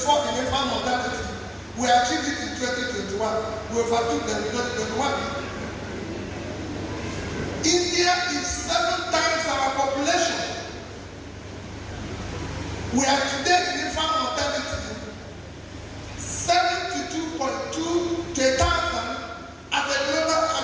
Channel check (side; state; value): both; identical; correlation 1.00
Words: in infant mortality. We achieved it in 2021. We overtook them in 2021. We are today in infant mortality 72.2 to 1,000 at the global,